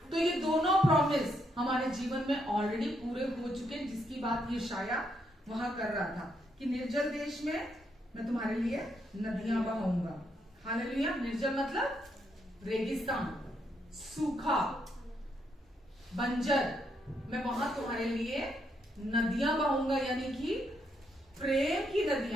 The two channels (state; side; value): normal; both; correlation 0.77